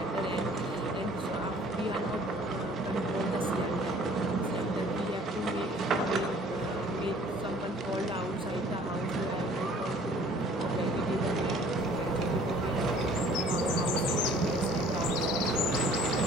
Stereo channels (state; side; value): normal; both; correlation 0.54